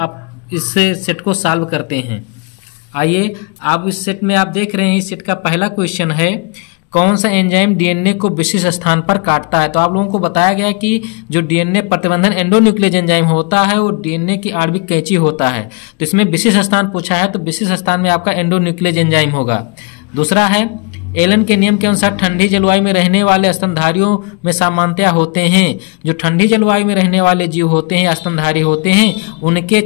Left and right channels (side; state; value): right; quieter; 31.2 dB